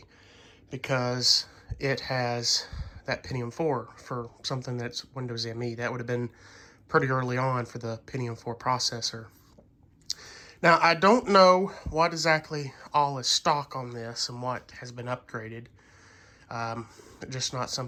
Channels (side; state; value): both; identical; correlation 1.00